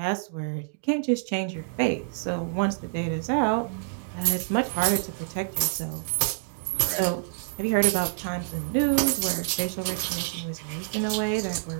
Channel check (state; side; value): silent; left; digital silence